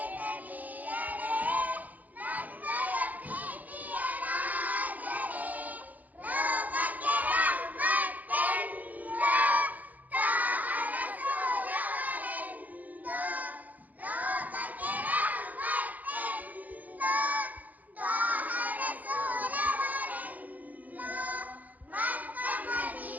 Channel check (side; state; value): left; late; 0.080 ms